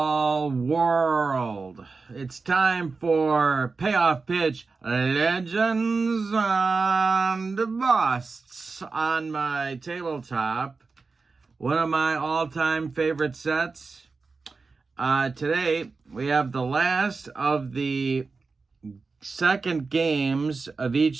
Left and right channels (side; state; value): left; quieter; 4.3 dB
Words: World. It's time for Payoff Pitch Legends and Busts on my tabletop. One of my all-time favorite sets. Today, we have the last of the second games of